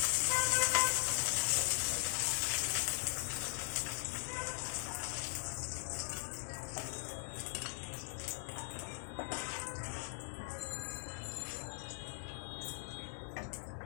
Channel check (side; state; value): right; silent; digital silence